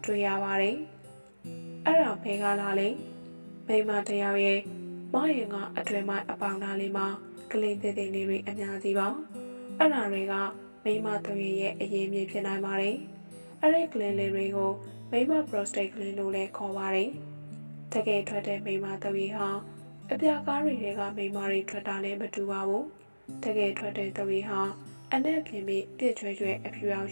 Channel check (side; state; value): both; inverted; correlation -1.00